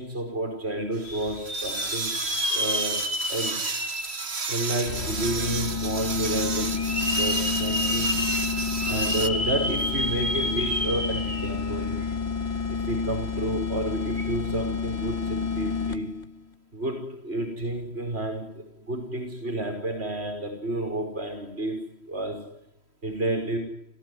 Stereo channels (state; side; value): late; left; 3.1 ms